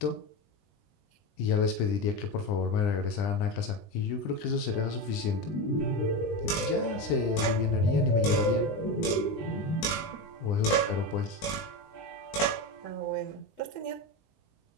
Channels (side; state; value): right; late; 20 ms